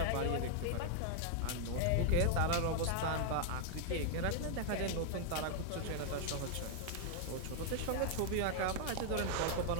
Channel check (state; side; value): different; both; correlation 0.00